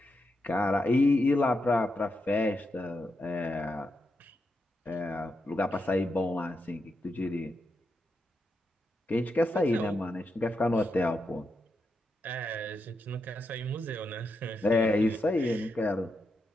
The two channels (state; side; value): normal; both; correlation 0.85